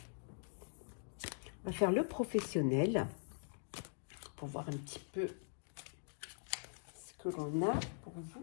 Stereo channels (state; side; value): silent; right; digital silence